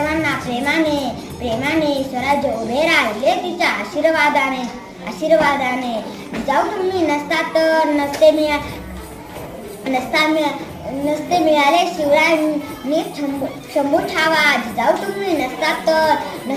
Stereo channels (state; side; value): identical; both; correlation 1.00